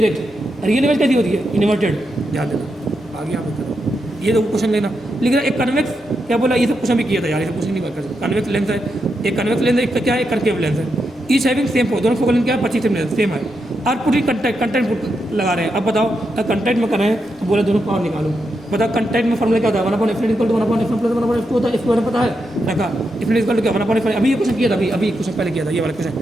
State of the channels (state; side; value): noise; left; rumble, 29 dB below the sound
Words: रियल इमेज कैसी होती है इन्वर्टेड, ध्यान देना। आगे आप करो, ये तो क्वेश्चन लेना, लेकिन एक कन्वेक्स क्या बोला, ये सब क्वेश्चन भी किया था यार, ये सब क्वेश्चन नहीं कर सकते। कन्वेक्स लेंस है, एक कन्वेक्स लेंस है, एक क्या है, एक कनकेव लेंस है, ईच हैविंग सेम दोनों फोकल लेंथ क्या है 25 सेम है, और पूरी कंटेंट लगा रहे हैं। अब बताओ अगर कंटेंट में कर रहे हैं तो बोला दोनों पावर निकालो, बताओ कंटेंट में फॉर्मूला क्या होता है 1/f equal to 1/f plus 1/f होता है, इसके बारे में पता है रखा, इफ इक्वल टू क्या 1/f, अभी ये क्वेश्चन किया था, अभी क्वेश्चन पहले किया था, ये वाला क्वेश्चन